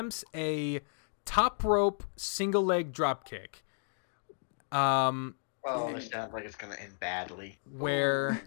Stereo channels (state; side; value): silent; right; digital silence